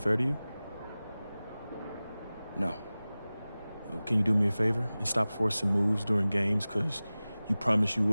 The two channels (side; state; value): both; inverted; correlation -0.98